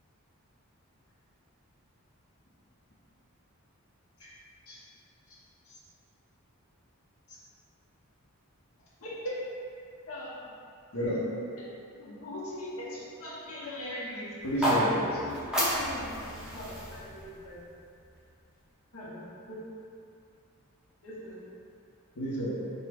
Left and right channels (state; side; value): normal; both; correlation 0.14